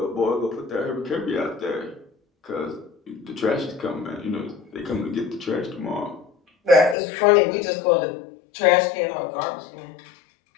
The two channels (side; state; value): right; drops out; at 7.0 s